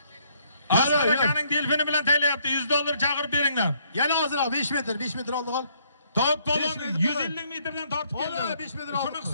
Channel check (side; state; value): both; inverted; correlation -0.68